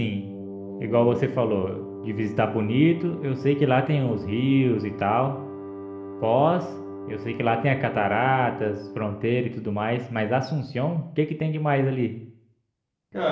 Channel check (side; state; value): both; identical; correlation 1.00